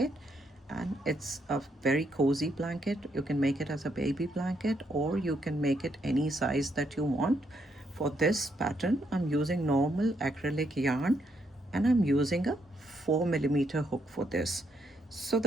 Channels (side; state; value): both; normal; correlation 0.76